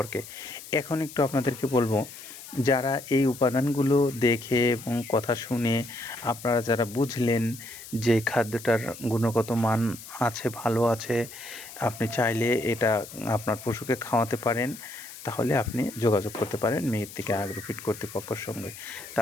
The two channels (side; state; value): left; noise; hiss, 15 dB below the sound